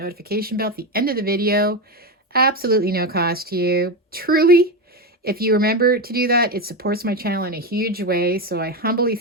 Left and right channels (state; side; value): normal; both; correlation 0.14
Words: bell at the end of the video. Absolutely no cost to you. Truly, if you remember to do that, it supports my channel in a huge way. So I humbly